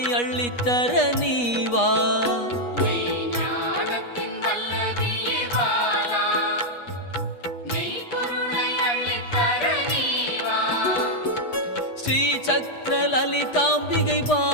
அள்ளித்தர நீவா ஸ்ரீ சக்கர லலிதாம்பிகை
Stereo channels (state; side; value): late; right; 8.3 ms